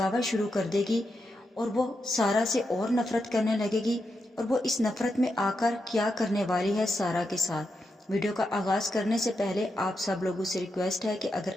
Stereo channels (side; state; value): both; normal; correlation 0.85